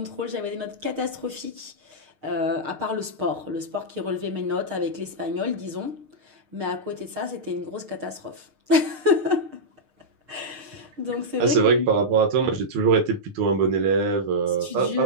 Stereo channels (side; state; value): left; late; 6.5 ms